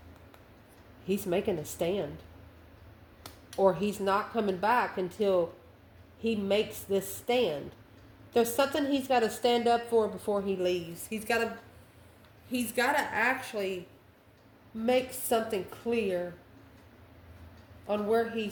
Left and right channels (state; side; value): identical; both; correlation 1.00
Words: He's making a stand. Or he's not coming back until he makes this stand. There's something he's got to stand up for before he leaves. He's got to actually make something clear on where he